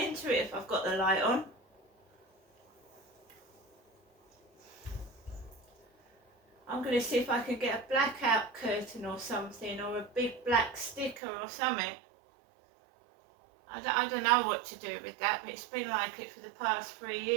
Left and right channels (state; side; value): drops out; left; at 11.2 s